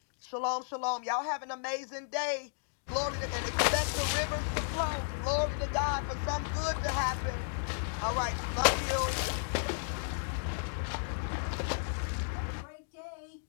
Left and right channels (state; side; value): silent; right; digital silence